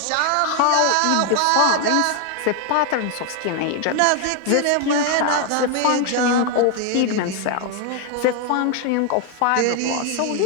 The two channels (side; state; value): both; different; correlation 0.01